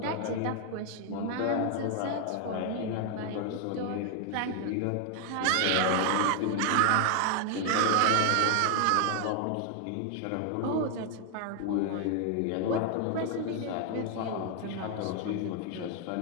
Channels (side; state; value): both; different; correlation 0.00